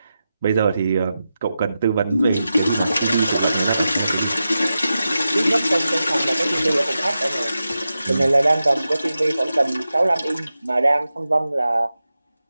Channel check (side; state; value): both; inverted; correlation -0.91